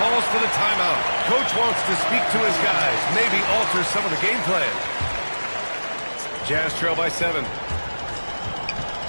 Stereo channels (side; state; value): both; inverted; correlation -1.00